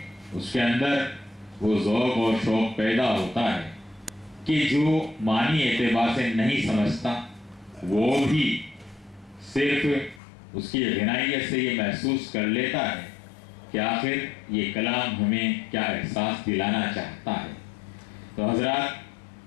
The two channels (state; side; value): drops out; right; at 10.2 s